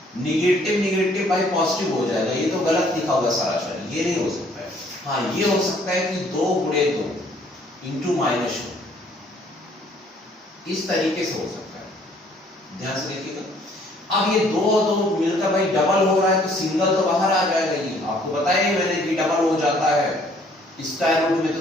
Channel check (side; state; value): both; normal; correlation 0.61